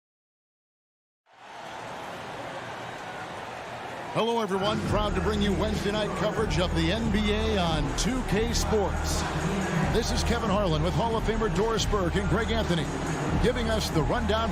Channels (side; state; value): both; identical; correlation 1.00